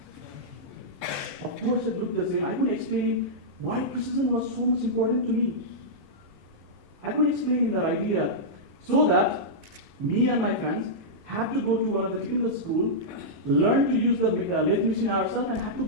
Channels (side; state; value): both; normal; correlation -0.10